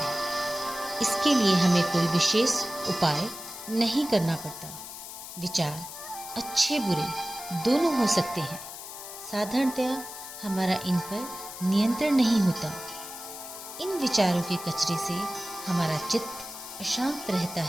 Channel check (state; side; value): noise; left; hiss, 11 dB below the sound